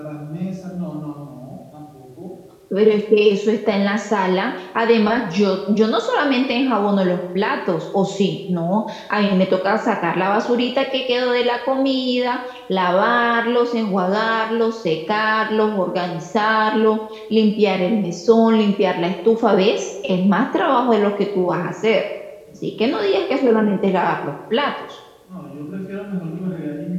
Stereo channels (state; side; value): identical; both; correlation 1.00